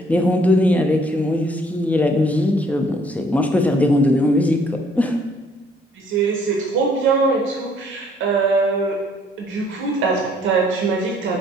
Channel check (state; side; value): normal; both; correlation 0.62